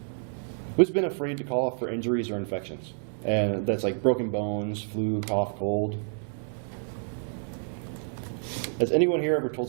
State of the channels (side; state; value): left; silent; 59 dB below the other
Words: Who's been afraid to call off for injuries or infections? And that's like broken bones, flu, cough, cold. Has anyone here ever told